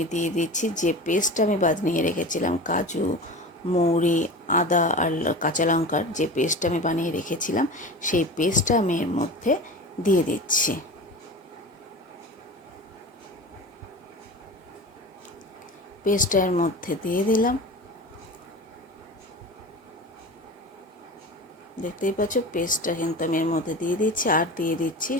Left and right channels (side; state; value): both; normal; correlation 0.32